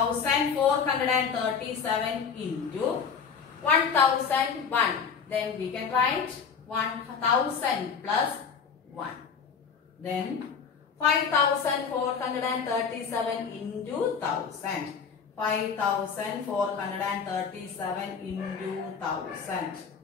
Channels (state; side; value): quieter; right; 6.3 dB